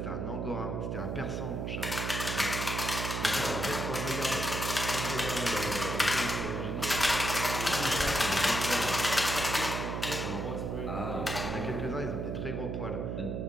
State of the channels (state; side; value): noise; right; hum, 2 dB below the sound